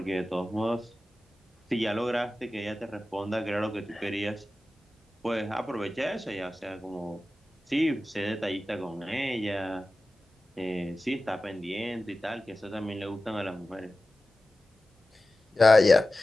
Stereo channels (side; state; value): both; normal; correlation 0.95